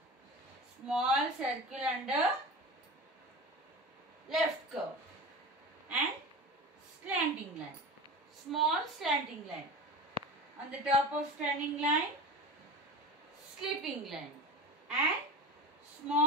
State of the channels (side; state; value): both; normal; correlation 0.30